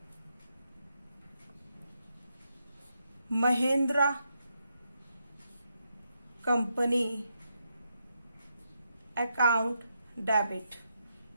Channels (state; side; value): inverted; both; correlation -0.81